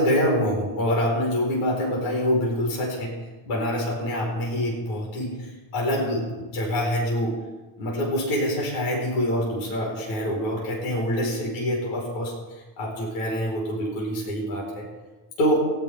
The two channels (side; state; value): right; late; 9.1 ms